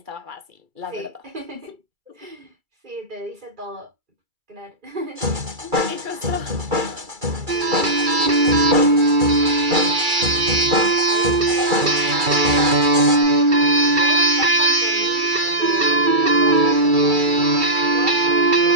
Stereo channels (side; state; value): left; late; 2.3 ms